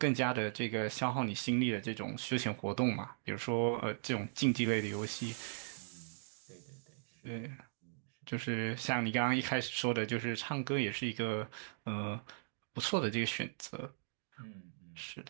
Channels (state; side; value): silent; left; digital silence